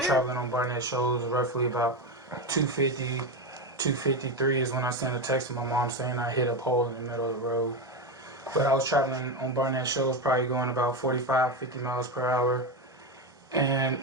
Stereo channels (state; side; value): normal; both; correlation 0.14